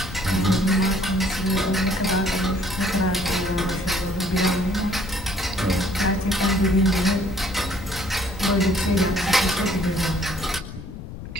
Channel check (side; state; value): left; noise; rumble, 11 dB below the sound